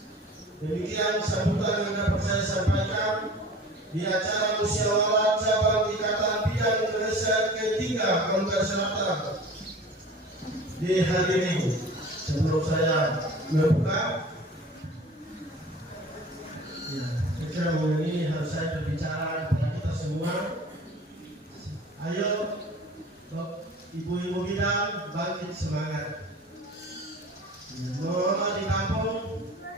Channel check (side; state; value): both; normal; correlation 0.42